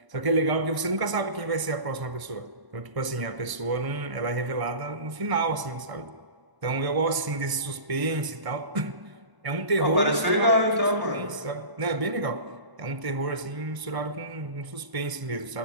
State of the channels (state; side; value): late; left; 1.0 ms